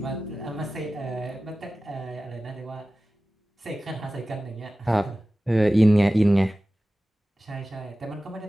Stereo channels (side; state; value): both; normal; correlation 0.96